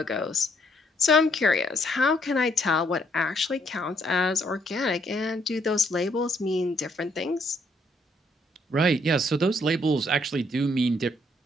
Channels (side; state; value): both; normal; correlation 0.70